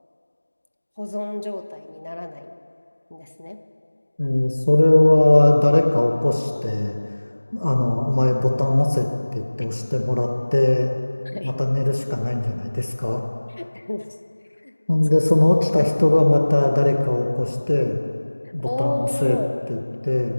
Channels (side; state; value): both; inverted; correlation -1.00